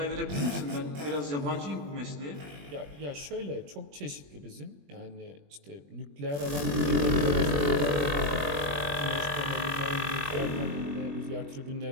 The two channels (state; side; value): late; left; 21 ms